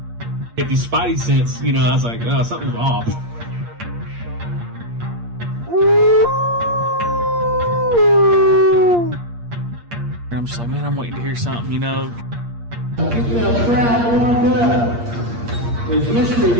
Get these spidey sense, I was like, oh, something's off. And I'm just like, man, I'm waiting to hear something, Keep that crowd warmed up. Is Mr.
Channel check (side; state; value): left; late; 8.6 ms